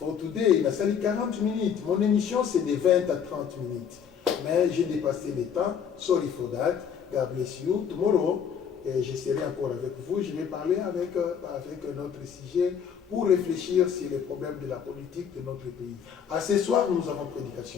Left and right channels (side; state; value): right; quieter; 7.6 dB